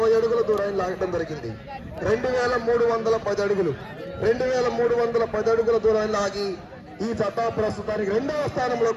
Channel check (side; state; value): both; identical; correlation 1.00